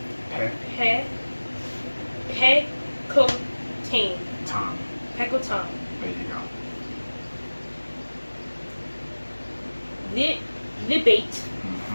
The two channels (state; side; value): inverted; both; correlation -1.00